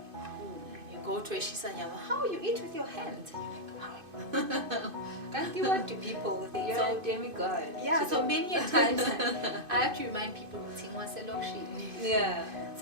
You go to a Shisanyama, how you eat with your hands? And you're like, wow. Can't you what do people think? You're a demigod. Yeah, so many a times I have to remind people, yeah.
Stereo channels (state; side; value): late; left; 2.5 ms